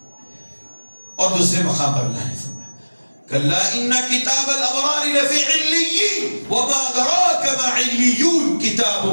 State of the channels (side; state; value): both; inverted; correlation -1.00